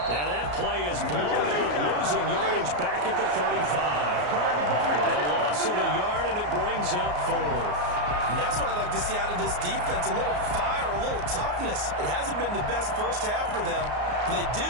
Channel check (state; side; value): late; left; 34 ms